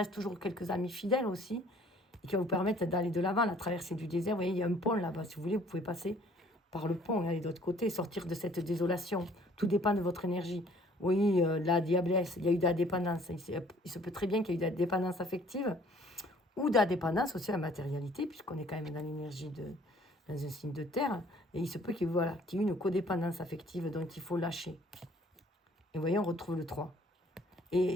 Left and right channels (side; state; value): both; normal; correlation 0.57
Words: toujours quelques amis fidèles aussi, et qui va vous permettre d'aller de l'avant, la traversée du désert. Vous voyez, il y a un pont là-bas. Si vous voulez, vous pouvez passer par le pont et aller de l'autre côté, sortir de cette désolation. Tout dépend de votre énergie. Oui, la diablesse, il y a eu de la dépendance. Il se peut très bien qu'il y ait eu de la dépendance affective, ou de la dépendance aussi à la matérialité, puisqu'on est quand même dans l'énergie dans un signe de terre, et il se peut qu'il y ait une codépendance affective dont il faut lâcher. Et vous voyez, on retrouve le 3. Et